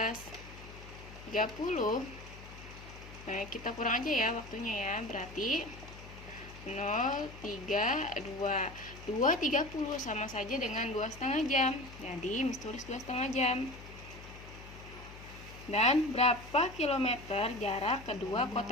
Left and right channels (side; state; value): left; noise; hum, 16 dB below the sound